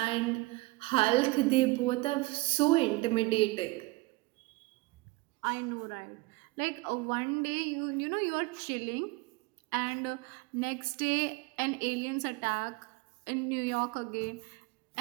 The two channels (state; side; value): quieter; left; 22.5 dB